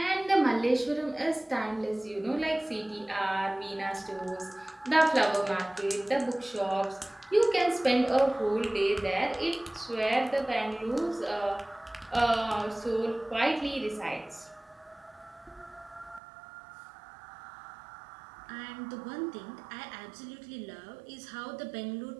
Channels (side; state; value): left; drops out; at 16.2 s